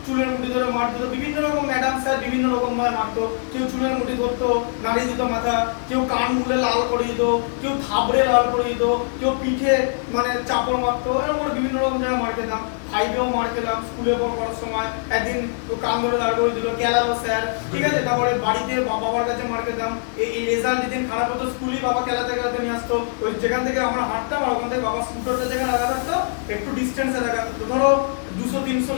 চুলের মুঠি ধরে মার দিত, বিভিন্ন রকম ম্যাডাম স্যার বিভিন্ন রকম ভাবে মারতো। কেউ চুলের মুঠি ধরতো, নাড়ি দিত মাথা, কেউ কান মুলে লাল করে দিত, কেউ থাবড়ে লাল করে দিত, কেউ পিঠে মানে চাপড় মারতো, এরকম করে বিভিন্ন রকম জায়গায় মার খেতাম। ফাইভেও মার খেলাম, স্কুলে পড়ার সময় একদিন কান ধরে দাঁড় করে দিল, কেলালো স্যার, ঠিক আছে। তারপরে বাড়িতে বাবার কাছে মার খেতাম। এই রেজাল্ট যেদিন খারাপ হতো স্কুলে বাবা খেলাতে খেলাতে নিয়ে আসতো, ওই যেখান থেকে আমরা হাঁটতাম আর ওখান থেকে বাবা স্কুটারটা যেখানে রাখা থাকতো একটু ডিস্টেন্সে রাখা থাকতো, ধরো 200-300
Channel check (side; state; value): right; silent; 56 dB below the other